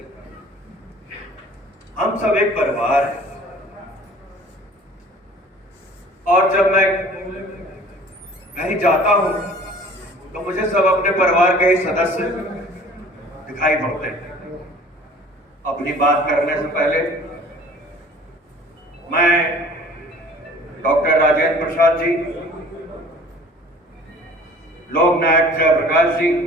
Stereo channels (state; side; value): normal; both; correlation 0.48